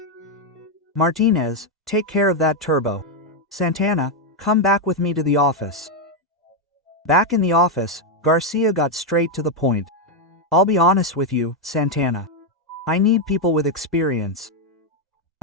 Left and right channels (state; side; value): normal; both; correlation 0.02